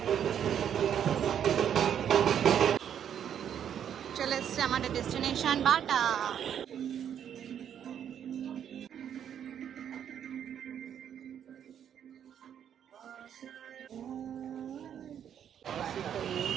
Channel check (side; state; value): left; quieter; 9.1 dB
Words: চলে এসছে আমাদের destination Bata.